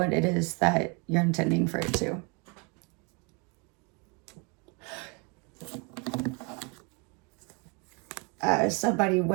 it is that you're intending for it to. Somebody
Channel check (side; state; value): left; quieter; 32.1 dB